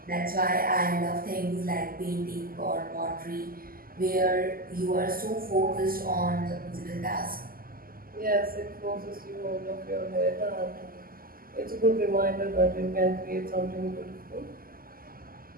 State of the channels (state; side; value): late; left; 0.42 ms